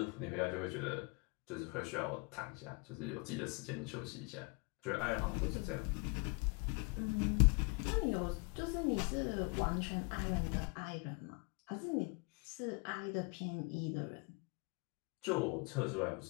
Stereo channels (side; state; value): right; quieter; 31.1 dB